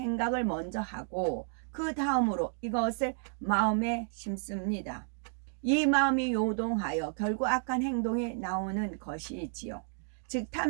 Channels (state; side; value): silent; left; 57 dB below the other